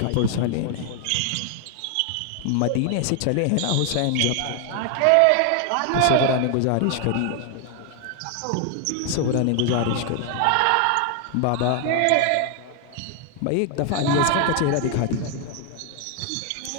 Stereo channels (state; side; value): different; both; correlation 0.00